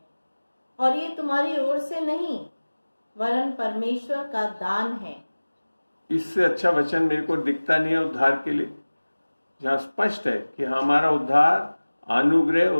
और ये तुम्हारी ओर से नहीं वरन परमेश्वर का दान है। इससे अच्छा वचन मेरे को दिखता नहीं है उद्धार के लिए, जहां स्पष्ट है कि हमारा उद्धार अनुग्रह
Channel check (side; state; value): both; inverted; correlation -1.00